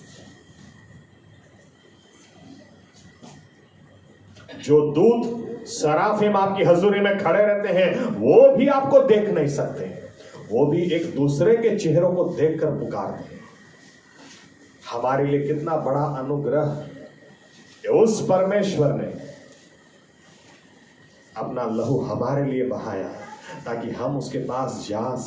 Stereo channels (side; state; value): both; identical; correlation 1.00